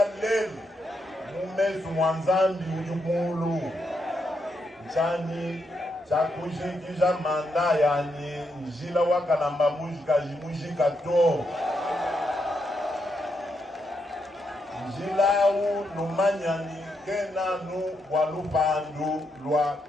Lel, Mumezu Mwanzambi Ujumulu, Chani, Chakushikisha Manda yani, Njila Wakalamba Mujika Jimujika To. Njila u Numanyani, Kena nu Walupandu, Lwa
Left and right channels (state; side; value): normal; both; correlation 0.81